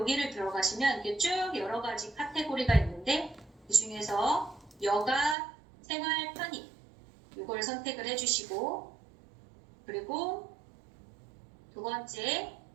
들어가시면 이게 쭉 여러 가지 카테고리가 있는데 그 중에서 여가 생활 편의 이걸 선택을 해주시고 그리고 두 번째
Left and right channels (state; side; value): drops out; left; at 5.4 s